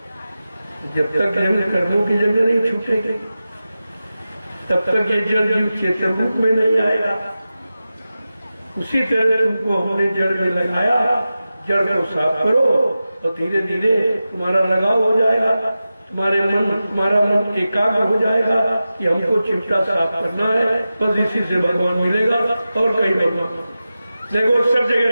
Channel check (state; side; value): inverted; both; correlation -0.93